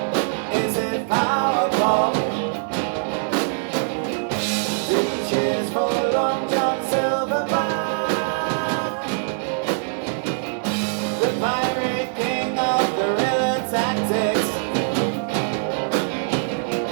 Is it power pop? Cheers for Long John Silverback, the pirate king of guerrilla tactics.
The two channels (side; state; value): left; silent; digital silence